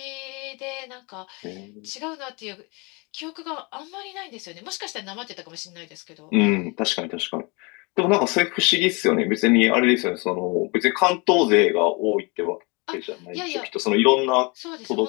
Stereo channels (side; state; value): right; quieter; 29.2 dB